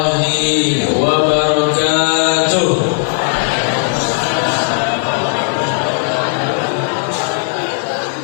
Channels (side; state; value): right; silent; digital silence